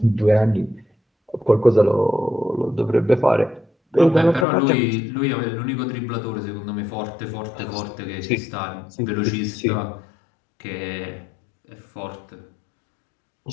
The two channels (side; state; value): right; drops out; at 4.5 s